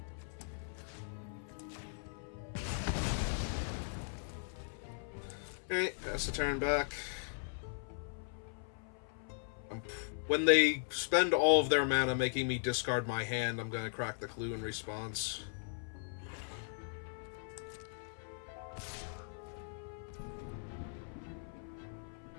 Okay, pass the turn back. When they spend all of their mana making me discard my hand, I'm gonna crack the clue in response.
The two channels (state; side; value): silent; right; 52 dB below the other